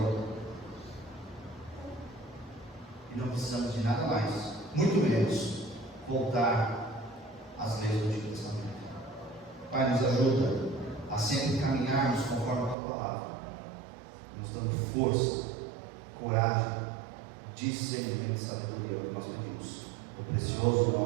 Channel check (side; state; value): left; drops out; at 12.8 s